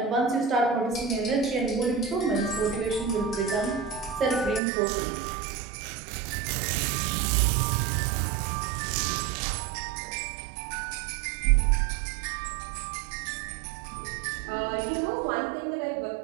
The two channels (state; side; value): drops out; left; at 4.6 s